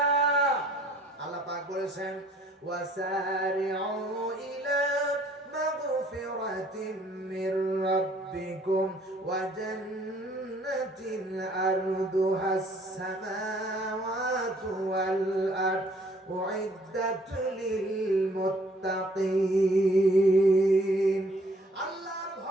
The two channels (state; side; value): normal; both; correlation 0.60